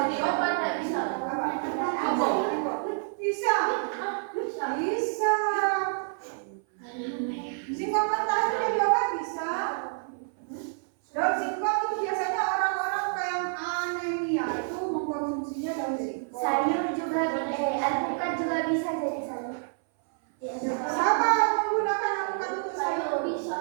bisa jadi sayur. Sama menggunakan alpukat untuk sayur.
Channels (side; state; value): left; silent; 59 dB below the other